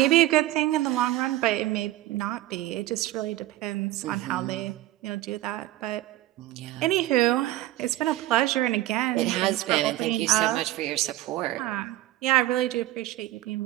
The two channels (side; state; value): left; quieter; 15.8 dB